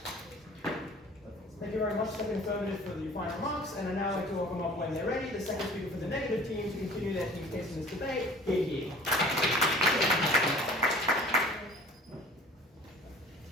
Thank you very much to the affirmative for the final remarks, and I now like to welcome up when they're ready the second speaker for the negative team to continue their team's case in this debate. Here.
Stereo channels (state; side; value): normal; both; correlation 0.47